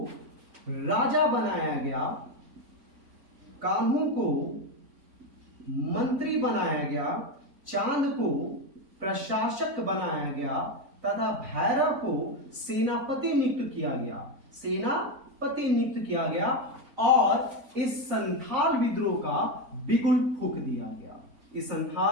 राजा बनाया गया, कान्हू को मंत्री बनाया गया, चांद को प्रशासक बनाया गया तथा भैरव को सेनापति नियुक्त किया गया। पति नियुक्त किया गया और इस संथाल विद्रोह का बिगुल फूंक दिया गया। इस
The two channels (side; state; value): left; late; 4.0 ms